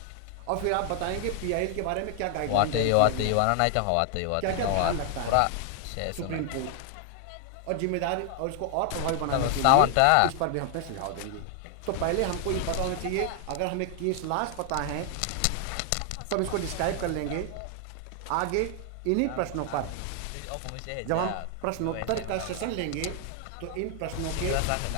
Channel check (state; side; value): different; both; correlation 0.00